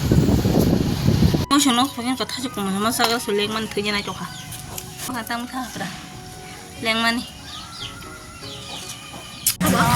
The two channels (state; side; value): identical; both; correlation 1.00